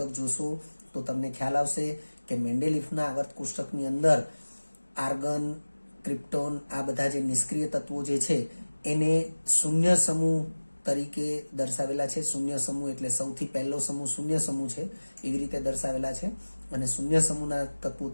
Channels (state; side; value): inverted; both; correlation -1.00